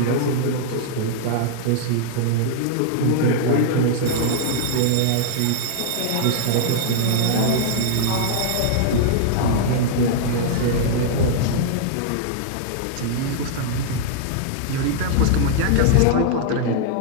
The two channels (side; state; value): both; different; correlation -0.01